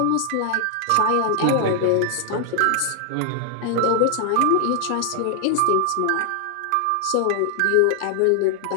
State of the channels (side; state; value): both; different; correlation 0.00